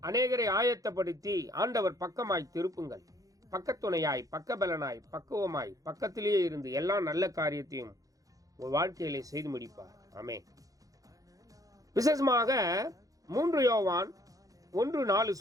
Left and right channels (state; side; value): late; left; 0.17 ms